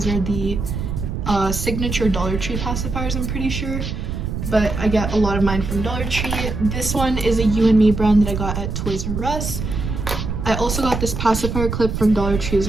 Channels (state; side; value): noise; right; rumble, 4 dB below the sound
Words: are the signature Dollar Tree pacifiers, I'm pretty sure. But I get a lot of mine from Dollar Tree. This one is a You and Me brand that I got at Toys R Us. I also got this pacifier clip from Dollar Tree as